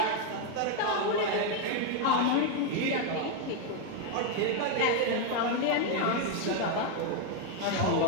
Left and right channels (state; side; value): different; both; correlation 0.01